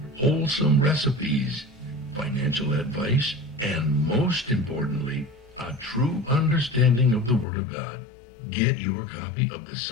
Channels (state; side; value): drops out; right; at 7.5 s